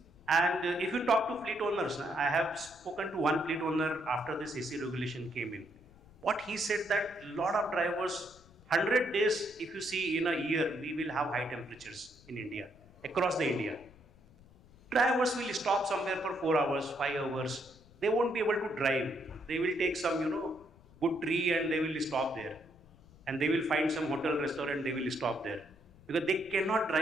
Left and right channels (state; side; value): noise; left; rumble, 25 dB below the sound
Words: And if you talk to fleet owners, I have spoken to one fleet owner after this AC regulation came in. What he said that lot of drivers, 100 days, if you see in a year, we will have high temperatures in India, across the India. Drivers will stop somewhere for 4 hours, 5 hours. They won't be able to drive. They will take some, good tree and they will stop there. And they will find some hotel, restaurant, they will stop there. Because they cannot